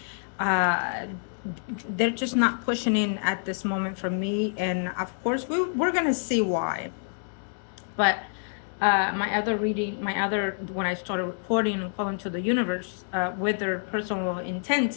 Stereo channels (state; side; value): silent; right; digital silence